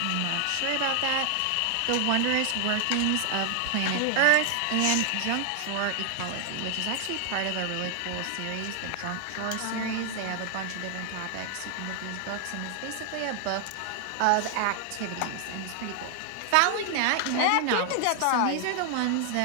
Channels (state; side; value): different; both; correlation 0.00